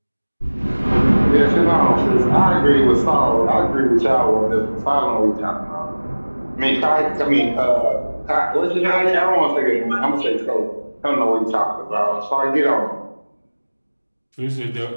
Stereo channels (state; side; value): inverted; both; correlation -1.00